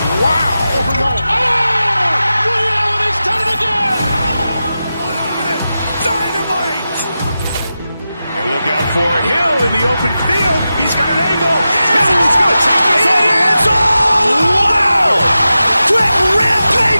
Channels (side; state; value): both; inverted; correlation -0.92